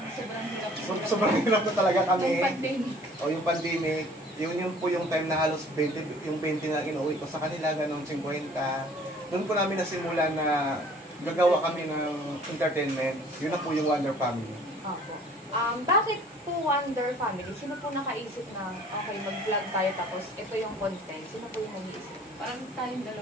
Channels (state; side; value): normal; both; correlation 0.52